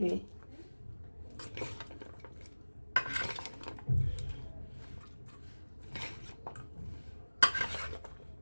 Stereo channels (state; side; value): inverted; both; correlation -1.00